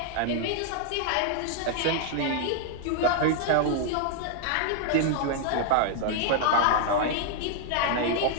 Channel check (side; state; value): both; different; correlation 0.00